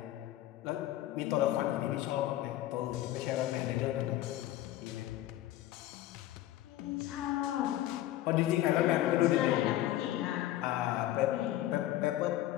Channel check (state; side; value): quieter; right; 14.2 dB